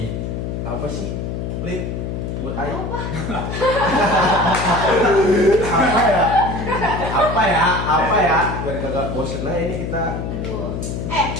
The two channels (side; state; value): left; noise; hum, 4 dB below the sound